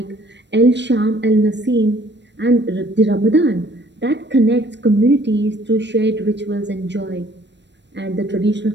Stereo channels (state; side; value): late; left; 0.52 ms